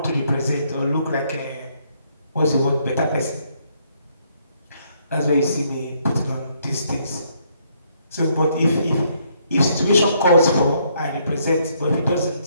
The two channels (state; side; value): inverted; both; correlation -0.70